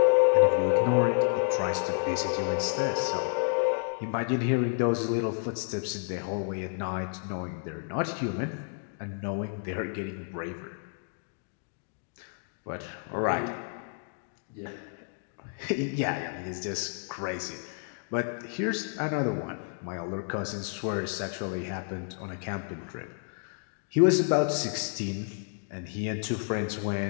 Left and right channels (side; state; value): right; silent; 58 dB below the other